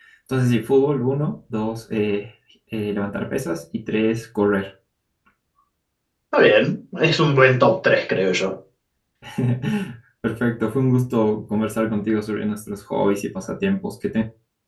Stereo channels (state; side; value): identical; both; correlation 1.00